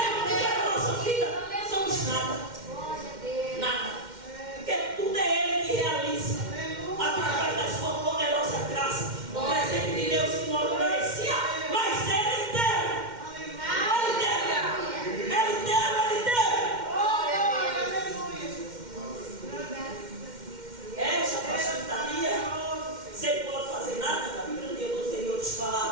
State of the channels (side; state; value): left; late; 2.1 ms